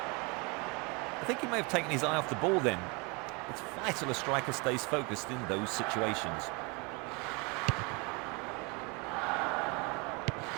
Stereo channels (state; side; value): quieter; left; 29.4 dB